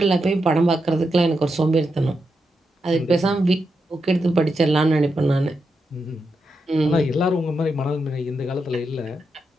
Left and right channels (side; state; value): both; normal; correlation 0.85